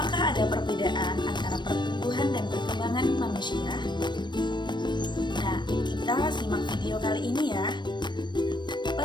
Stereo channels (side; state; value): right; late; 0.22 ms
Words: ada perbedaan antara pertumbuhan dan perkembangan manusia? Nah, kita simak video kali ini ya.